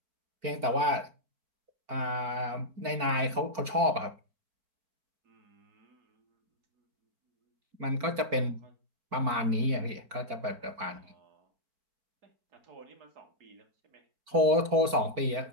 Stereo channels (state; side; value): late; left; 4.5 ms